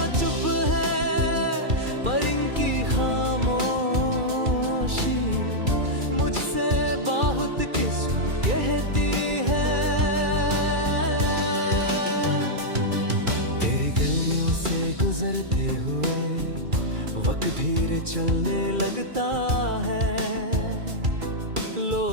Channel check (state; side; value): late; left; 2.3 ms